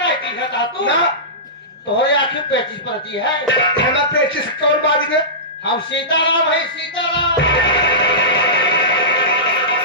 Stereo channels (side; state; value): both; normal; correlation -0.19